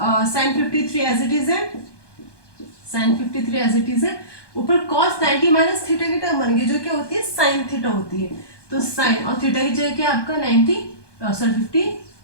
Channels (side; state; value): right; late; 1.2 ms